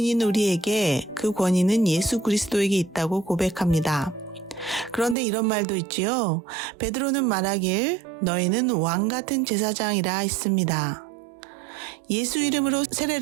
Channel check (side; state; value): left; drops out; at 5.2 s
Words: 우리에게 그 권위는 예수 그리스도에게 있다고 고백합니다. 그런데 이런 말도 있지요. 베드로는 말하길 너희는 왕 같은 제사장이라 했습니다. 예수 이름으로